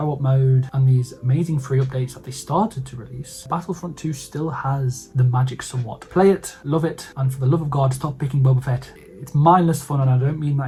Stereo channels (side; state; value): both; identical; correlation 1.00